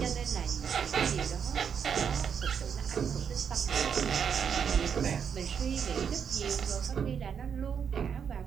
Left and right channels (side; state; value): left; quieter; 7.3 dB